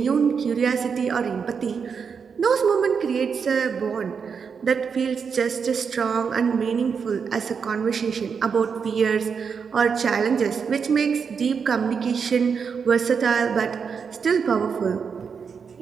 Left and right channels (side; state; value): left; quieter; 6.2 dB